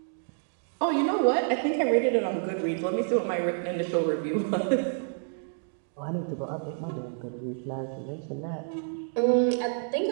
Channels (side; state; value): left; silent; digital silence